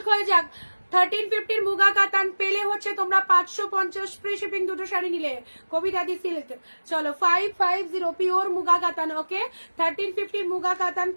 হয়ে যাক। 1350 মুগা কাতান পেলে হচ্ছে তোমরা 550 ফ্রি শিপিং, দুটো শাড়ি নিলে। কবিতা দি সিল্ক। চলো 550 পিওর মুগা কাতান, ওকে 1350 মুগা কাতান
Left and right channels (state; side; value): inverted; both; correlation -1.00